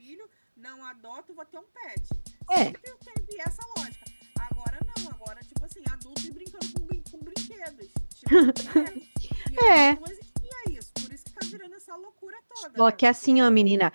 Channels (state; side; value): inverted; both; correlation -1.00